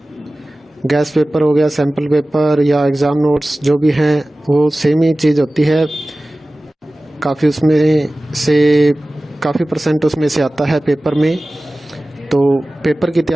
गैस पेपर हो गया, सैम्पल पेपर या एग्ज़ाम नोट्स जो भी हैं वो सेम ही चीज़ होती है। काफ़ी उसमें से काफ़ी परसेंट उसमें से आता है पेपर में। तो पेपर की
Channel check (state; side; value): normal; both; correlation 0.97